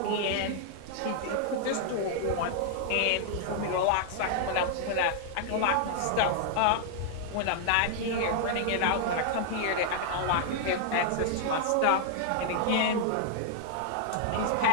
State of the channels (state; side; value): different; both; correlation 0.00